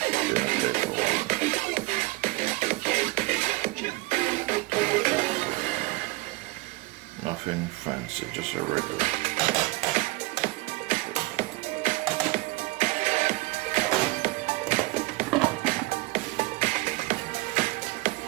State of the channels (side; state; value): left; quieter; 21.5 dB